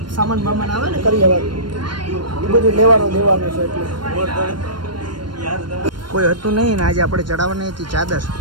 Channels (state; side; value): late; left; 0.72 ms